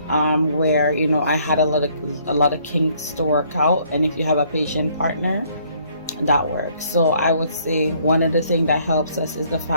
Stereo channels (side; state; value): both; inverted; correlation -0.64